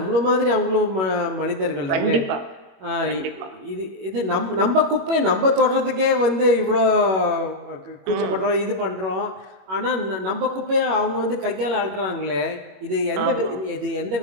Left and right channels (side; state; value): left; late; 21 ms